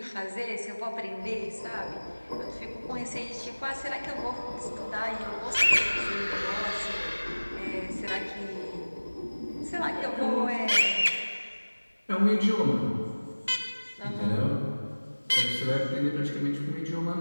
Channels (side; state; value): both; inverted; correlation -1.00